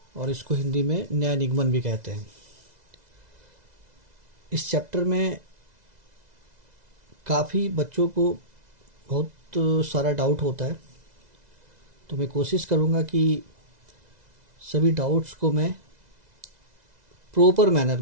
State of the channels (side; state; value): left; late; 2.0 ms